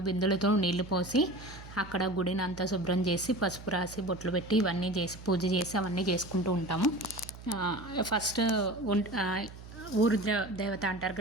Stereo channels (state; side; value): noise; right; hum, 15 dB below the sound